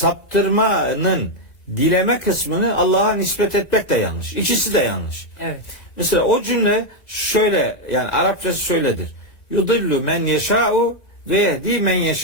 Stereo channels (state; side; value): late; right; 1.9 ms